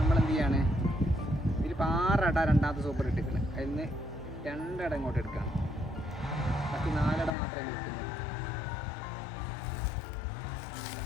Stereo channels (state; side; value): drops out; right; at 7.3 s